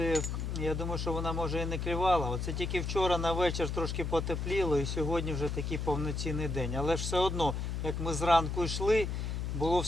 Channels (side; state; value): left; noise; hum, 2 dB below the sound